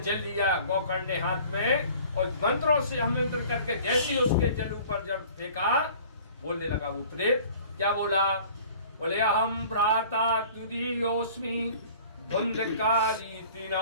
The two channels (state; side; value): inverted; both; correlation -0.48